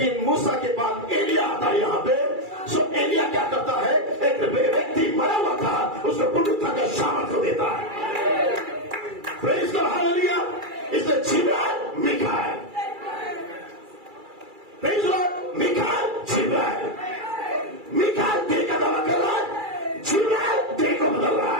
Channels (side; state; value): left; late; 2.3 ms